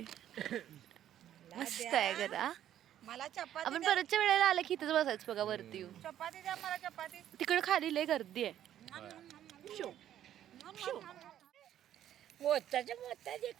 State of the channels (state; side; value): quieter; left; 11.2 dB